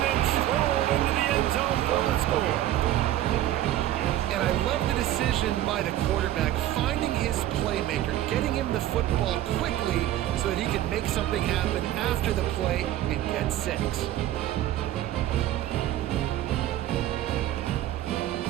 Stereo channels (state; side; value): quieter; left; 13.4 dB